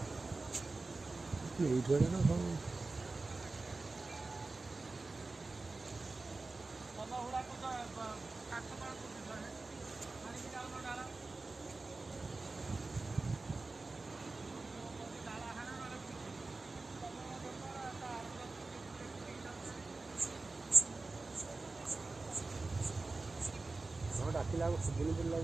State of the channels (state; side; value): quieter; left; 3.5 dB